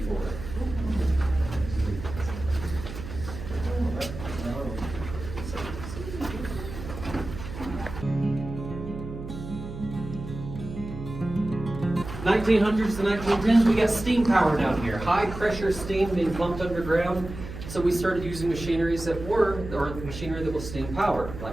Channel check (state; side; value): noise; right; hum, 10 dB below the sound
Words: (1900s to 1910s), we got steam power down here. High pressure steam being pumped underground. So we started using machinery that was steam powered,